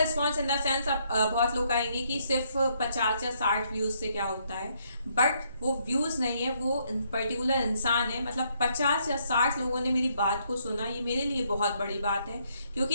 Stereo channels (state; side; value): inverted; both; correlation -0.72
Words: इन द सेंस अब बहुत लोग कहेंगे कि सिर्फ 50 या 60 व्यूज से क्या होता है, बट वो व्यूज नहीं है, वो पर्टिकुलर इंसान है। मतलब 50 या 60 लोगों ने मेरी बात को सुना, ये मेरे लिए बहुत बड़ी बात है।